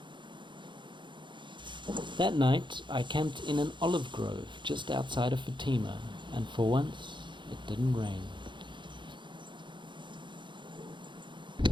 That night, I camped in an olive grove just outside of Fatima, and for once, it didn't rain.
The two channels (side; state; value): left; late; 0.23 ms